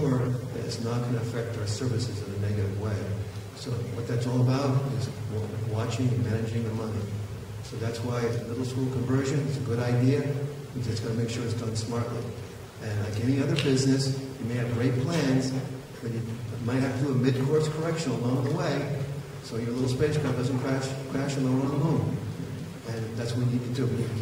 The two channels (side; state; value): both; identical; correlation 1.00